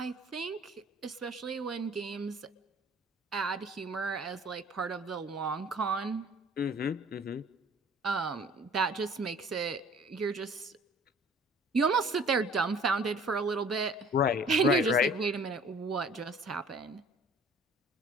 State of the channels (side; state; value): both; normal; correlation 0.51